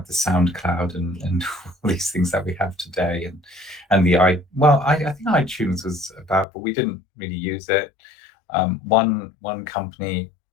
the SoundCloud and all these things that we have today, and I think iTunes was about, but we didn't really use it. One company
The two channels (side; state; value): right; drops out; at 6.5 s